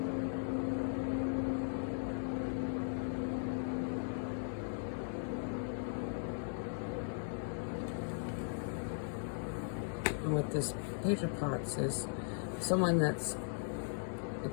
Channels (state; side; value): silent; right; 52 dB below the other